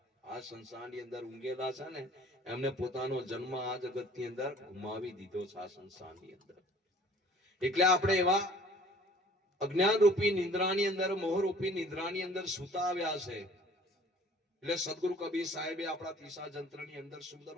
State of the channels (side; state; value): both; normal; correlation 0.52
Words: આ સંસારની અંદર ઊંઘેલા છે ને એમને પોતાનો જન્મ આ જગતની અંદર ગુમાવી દીધો છે આ સંસારની અંદર. એટલે આપણે એવા અજ્ઞાન રૂપી નિંદ્રાની અંદર, મોહ રૂપી નિંદ્રાની અંદર સૂતા આવ્યા છે. એટલે સદગુરુ કબીર સાહેબે આપણા તીસા જંત્રની અંદર સુંદર